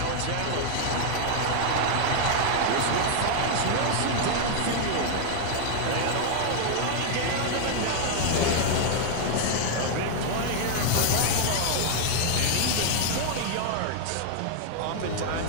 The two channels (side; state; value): both; different; correlation 0.00